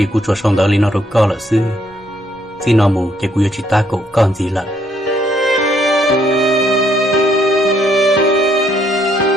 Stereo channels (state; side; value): normal; both; correlation 0.70